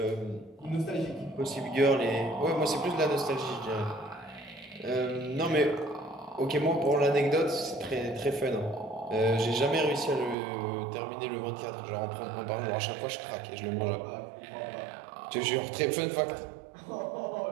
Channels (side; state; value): left; drops out; at 10.4 s